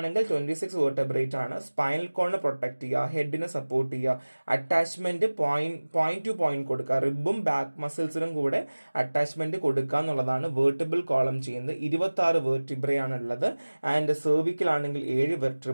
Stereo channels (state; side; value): inverted; both; correlation -1.00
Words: 26 വെർട്ടബ്രേറ്റ് ആണ്. സ്പൈനൽ കോളിനെ പ്രൊട്ടക്ട് ചെയ്യുക, ഹെഡിനെ സപ്പോർട്ട് ചെയ്യുക, അറ്റാച്ച്മെന്റ് പോയിന്റ് ടു പോയിന്റ് കൊടുക്കുക, റിബും ബാക്ക് മസിൽസിനും കൂടെ അറ്റാച്ച്മെന്റ് കൊടുക്കുക എന്നുള്ളതാണ് വെർട്ടിബിൾ കോളം ചെയ്യുന്നത്. 26 വെർട്ടിബ്രേ ആണ് ഉള്ളത്. ആൻഡ് സെർവിക്കൽ ആണെങ്കിൽ 7